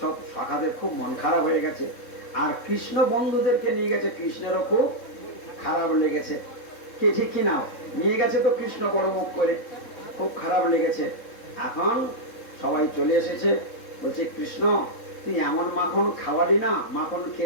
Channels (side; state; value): right; late; 3.7 ms